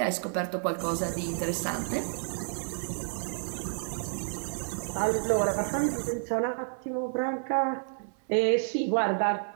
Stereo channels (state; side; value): silent; left; 56 dB below the other